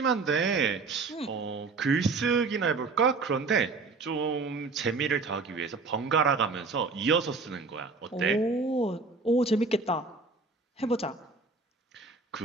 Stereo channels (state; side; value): quieter; left; 4.0 dB